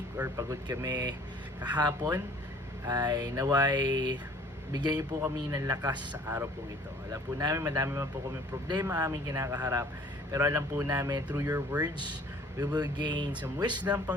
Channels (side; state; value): both; normal; correlation 0.53